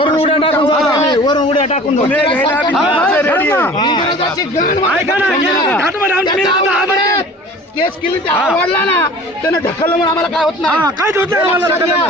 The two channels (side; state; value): both; normal; correlation 0.44